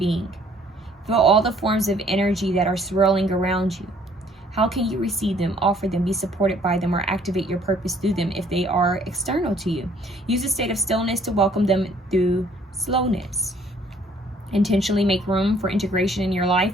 Feel all the forms of energy that are swirling around you. How can you receive them, offer them, be supported by them, or activate your purpose through them if they are external to you? Use a state of stillness to welcome them through slowness. Intentionally make room for integration in your life,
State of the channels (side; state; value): both; normal; correlation 0.60